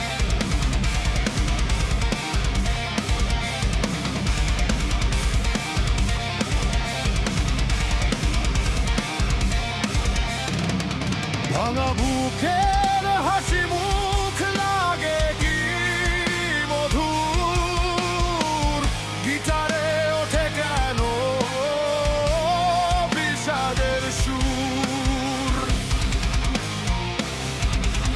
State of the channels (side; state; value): both; identical; correlation 1.00